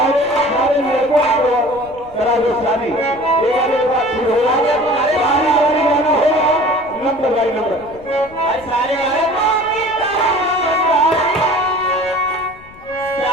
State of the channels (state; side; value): noise; left; rumble, 23 dB below the sound